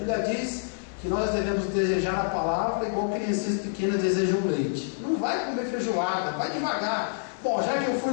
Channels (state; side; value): silent; right; digital silence